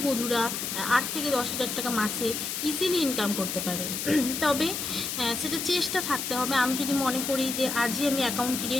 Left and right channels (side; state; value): left; noise; hiss, 3 dB below the sound